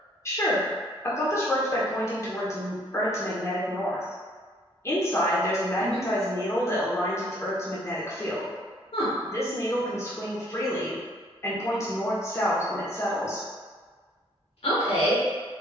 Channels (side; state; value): both; normal; correlation 0.61